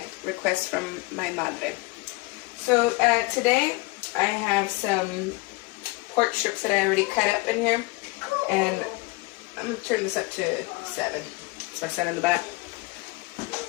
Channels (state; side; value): quieter; right; 24.1 dB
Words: request from my madre. So today I have some pork strips that I already cut up in here. And I'm going to turn this up to 7. So I set in the back.